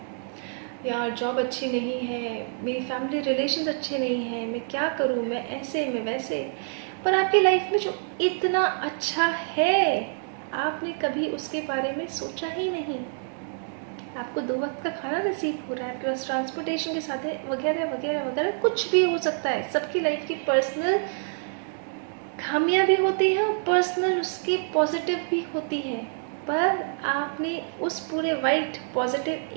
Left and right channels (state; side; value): silent; left; 60 dB below the other